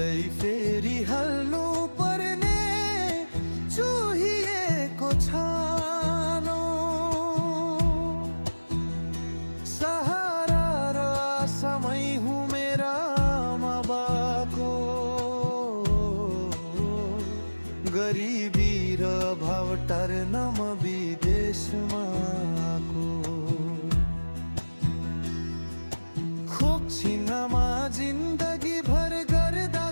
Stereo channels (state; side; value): inverted; both; correlation -1.00